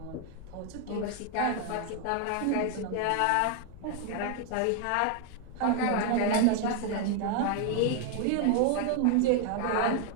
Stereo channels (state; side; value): different; both; correlation 0.01